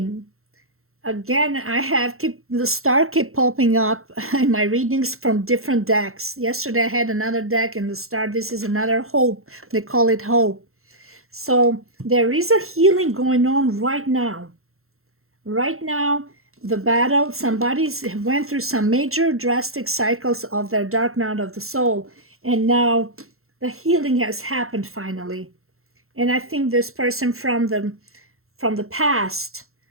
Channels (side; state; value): left; late; 0.62 ms